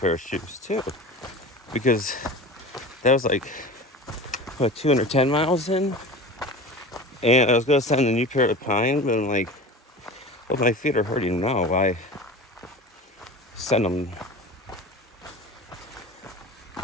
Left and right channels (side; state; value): both; normal; correlation 0.34